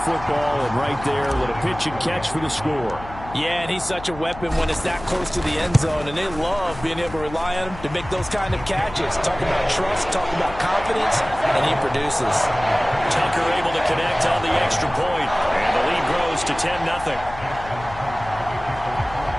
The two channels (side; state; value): left; noise; hum, 14 dB below the sound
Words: football, and right there, a little pitch and catch for the score. Yeah, and he's such a weapon when it's that close to the end zone, and they love being able to rely on him to make those kind of catches. Talk about trust, talk about confidence, and he produces. Tucker able to connect on the extra point, and the lead grows to 10-0.